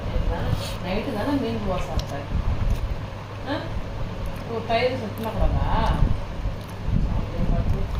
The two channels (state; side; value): identical; both; correlation 1.00